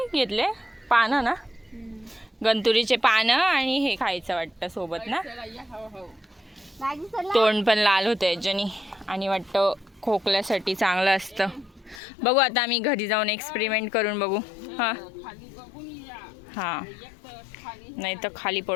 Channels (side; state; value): right; drops out; at 12.0 s